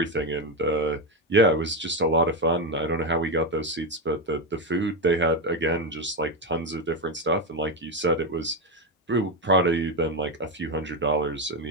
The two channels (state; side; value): normal; both; correlation 0.11